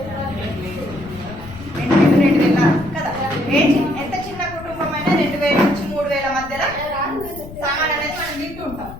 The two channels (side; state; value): left; noise; rumble, 15 dB below the sound